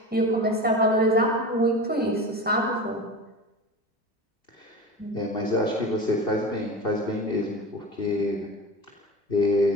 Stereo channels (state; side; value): normal; both; correlation 0.30